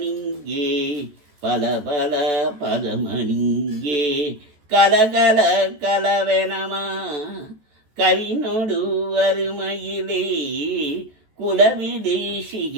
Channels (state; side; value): late; left; 14 ms